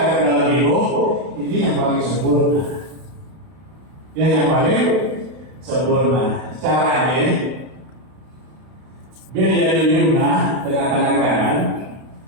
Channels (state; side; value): late; left; 32 ms